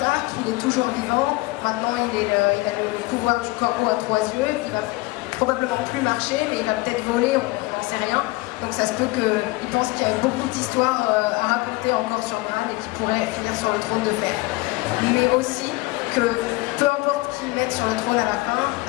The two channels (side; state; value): right; quieter; 21.6 dB